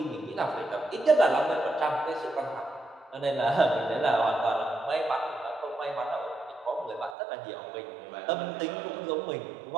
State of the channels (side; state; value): left; drops out; at 7.2 s